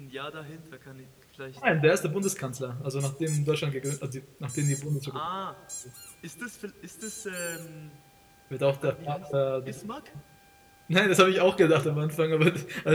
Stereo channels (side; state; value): both; identical; correlation 1.00